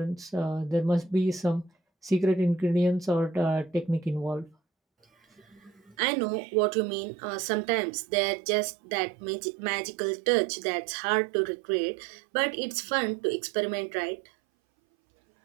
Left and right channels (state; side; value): drops out; left; at 6.0 s